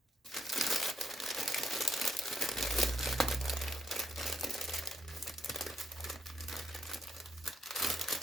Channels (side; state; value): both; normal; correlation 0.76